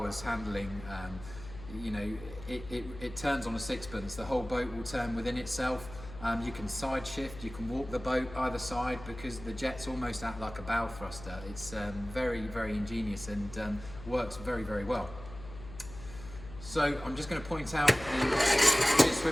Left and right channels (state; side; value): noise; left; hum, 14 dB below the sound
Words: handling. You know, it turns on a sixpence. The whole boat will turn within itself. You can side shift, you can walk the boat either side because the jets almost act like a bow thruster. It's very, very ingenious and works very, very well. So I'm just going to point out the